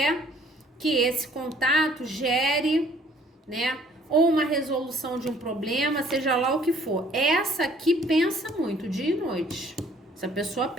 que esse contato gere, né, ou uma resolução de um problema, seja lá o que for. Essa aqui pensa muito, dia e noite. Essa pessoa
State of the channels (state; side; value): normal; both; correlation 0.59